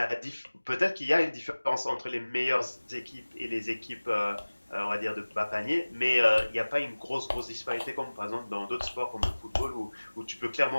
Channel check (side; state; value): both; inverted; correlation -1.00